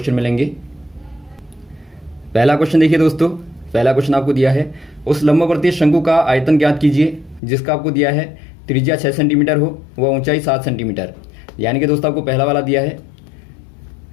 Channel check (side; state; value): right; drops out; at 7.4 s